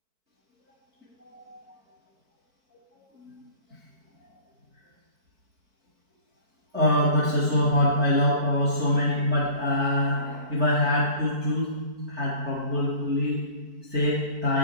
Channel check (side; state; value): left; late; 4.5 ms